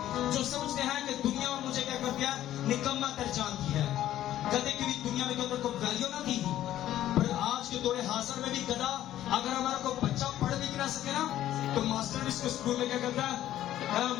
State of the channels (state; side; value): quieter; right; 12.8 dB